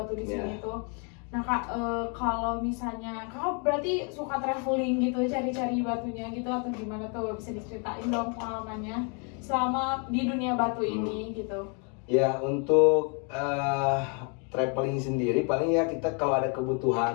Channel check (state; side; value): quieter; right; 37.3 dB